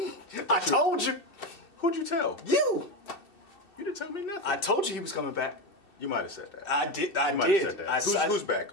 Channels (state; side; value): late; right; 2.7 ms